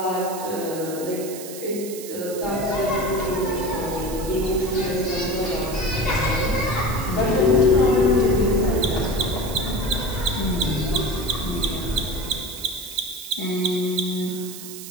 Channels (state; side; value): noise; right; hiss, 12 dB below the sound